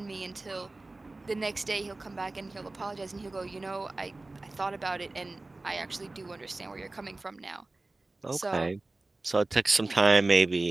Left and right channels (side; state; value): left; quieter; 3.1 dB